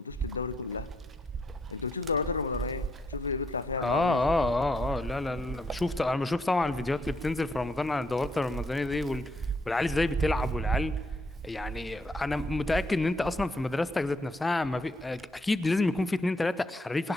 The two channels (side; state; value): both; normal; correlation 0.74